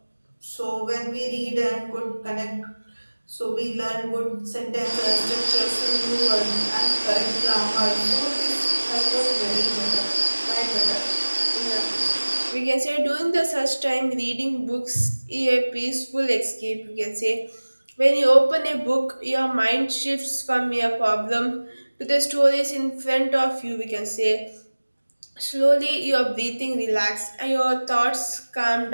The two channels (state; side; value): inverted; both; correlation -1.00